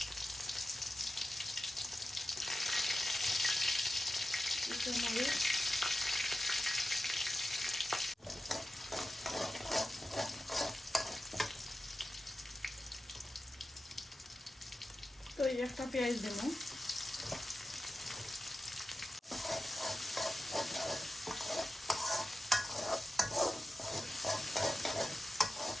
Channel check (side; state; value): both; normal; correlation 0.92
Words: মরিচ, তো একটা পেঁয়াজ দেব।